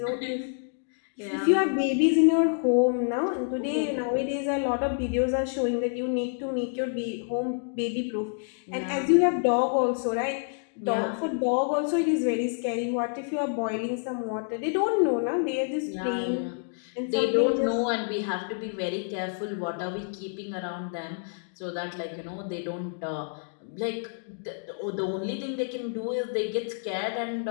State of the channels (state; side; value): silent; right; digital silence